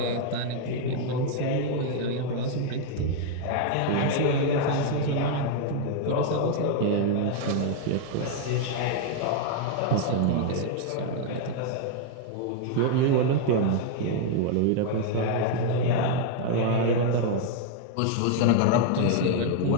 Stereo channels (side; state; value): both; different; correlation 0.00